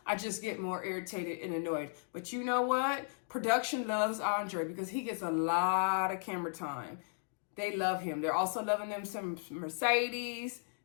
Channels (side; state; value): right; silent; digital silence